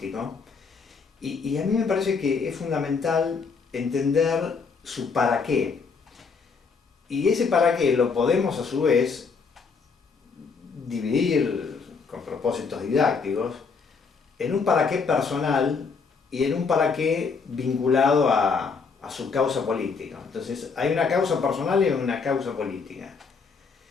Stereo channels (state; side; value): quieter; right; 5.1 dB